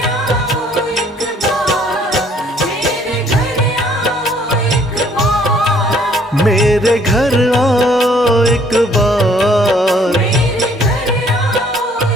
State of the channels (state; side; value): normal; both; correlation 0.61